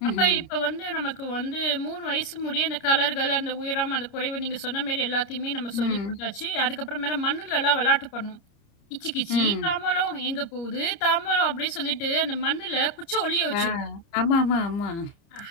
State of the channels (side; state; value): right; late; 30 ms